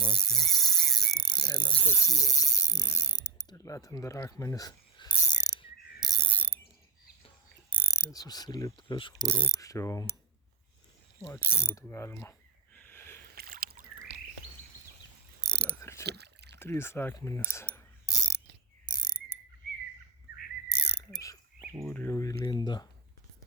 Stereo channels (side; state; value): left; quieter; 4.5 dB